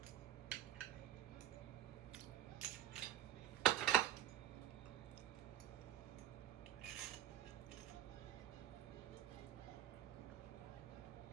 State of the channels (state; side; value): quieter; left; 12.1 dB